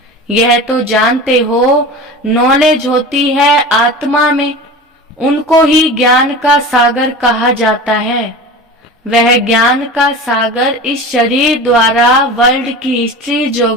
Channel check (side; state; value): both; normal; correlation 0.33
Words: यह तो जानते हो, नॉलेज होती है आत्मा में, उनको ही ज्ञान का सागर कहा जाता है। वह ज्ञान का सागर इस शरीर द्वारा वर्ल्ड की हिस्ट्री